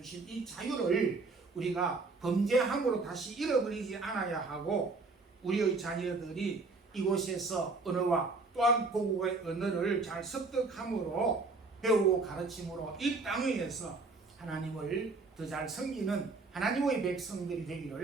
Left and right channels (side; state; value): left; quieter; 3.8 dB